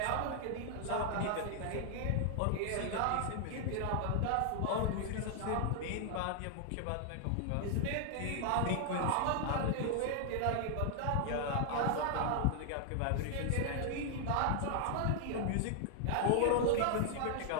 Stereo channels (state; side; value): different; both; correlation 0.00